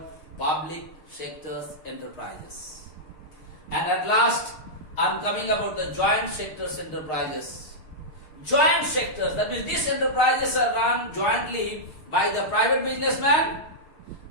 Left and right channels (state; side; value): late; right; 6.5 ms